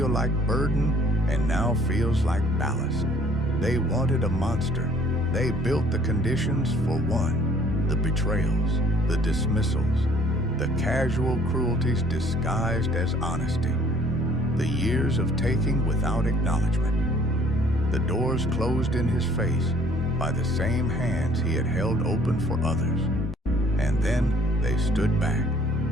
like burden and now feels like ballast. They wanted a monster. They built the conditions for one. The betrayals, the dismissals, the casual cruelties disguised as honesty. The years of taking without acknowledgement. The doors closed in his face by the same hands he had held open for others. And then they stood back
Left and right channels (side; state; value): both; normal; correlation 0.58